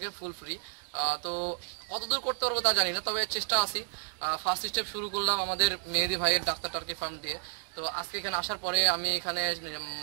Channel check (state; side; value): silent; left; digital silence